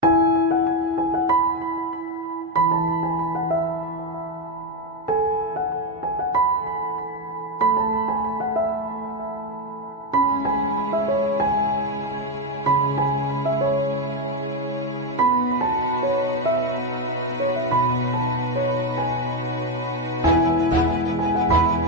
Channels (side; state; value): both; normal; correlation 0.08